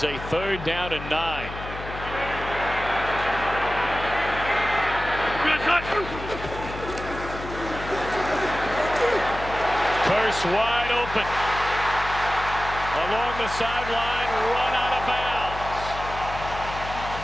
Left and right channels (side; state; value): left; noise; hum, 10 dB below the sound